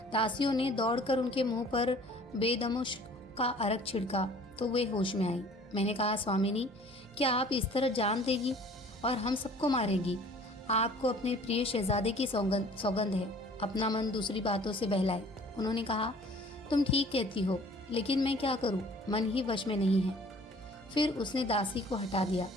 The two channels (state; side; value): normal; both; correlation 0.51